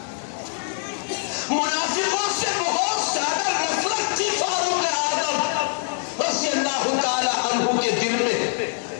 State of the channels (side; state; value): right; silent; 63 dB below the other